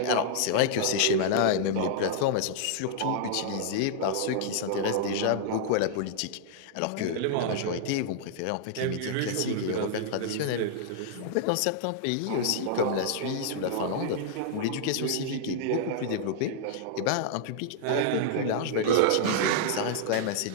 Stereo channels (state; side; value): different; both; correlation -0.01